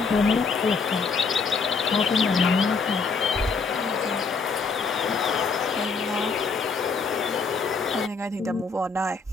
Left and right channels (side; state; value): right; quieter; 4.7 dB